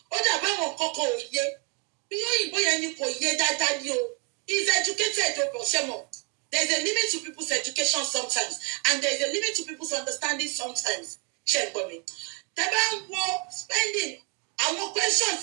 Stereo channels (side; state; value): left; quieter; 35.0 dB